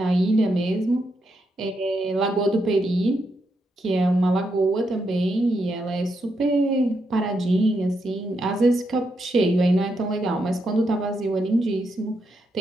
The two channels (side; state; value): both; normal; correlation 0.82